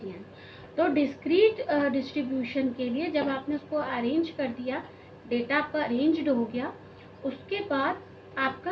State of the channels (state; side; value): identical; both; correlation 1.00